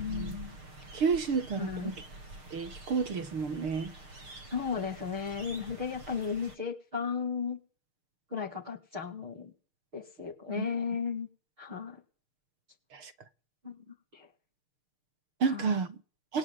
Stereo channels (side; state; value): left; late; 6.6 ms